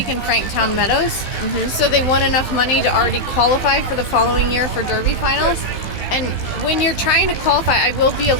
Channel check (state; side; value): late; right; 16 ms